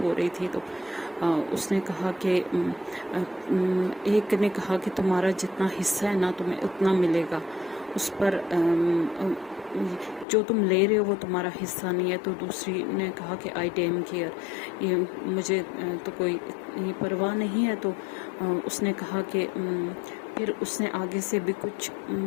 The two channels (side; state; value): right; drops out; at 10.2 s